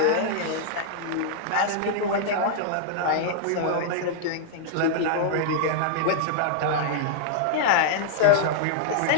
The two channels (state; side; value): different; both; correlation -0.01